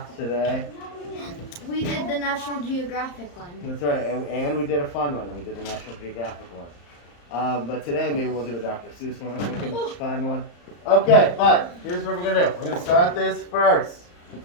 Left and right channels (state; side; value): late; right; 34 ms